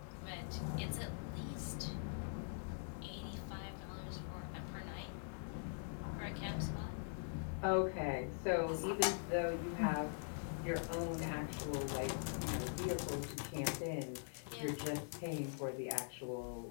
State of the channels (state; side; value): silent; right; digital silence